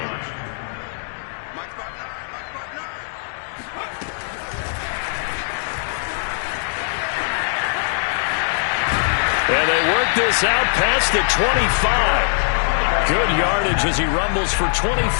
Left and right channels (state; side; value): silent; right; 65 dB below the other